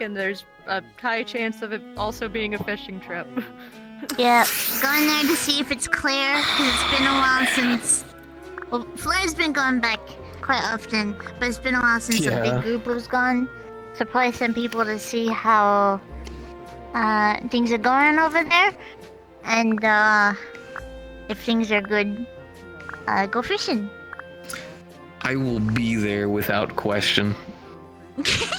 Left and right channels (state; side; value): identical; both; correlation 1.00